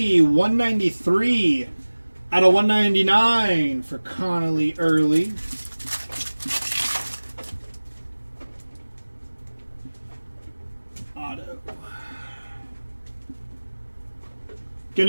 193 out of 199 for Connolly Early. Auto. Going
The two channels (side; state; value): both; inverted; correlation -1.00